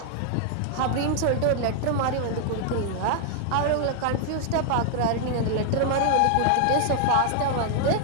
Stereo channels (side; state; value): both; different; correlation 0.00